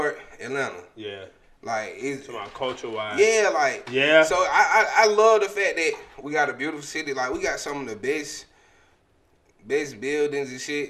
Atlanta. Yeah. Like it's about culture wise. Yeah, like yeah. So I love the fact that we got a beautiful city. Like we got some of the best buildings and shit.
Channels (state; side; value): identical; both; correlation 1.00